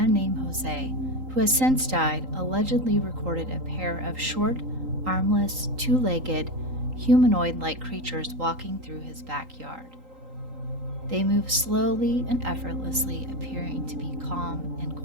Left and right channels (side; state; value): left; late; 3.8 ms